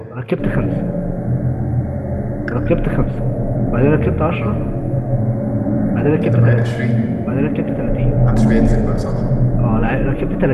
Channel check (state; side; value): identical; both; correlation 1.00